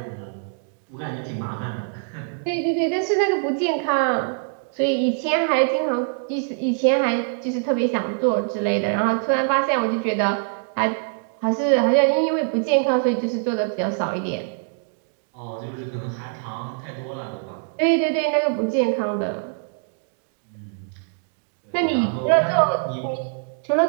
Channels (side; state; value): left; silent; digital silence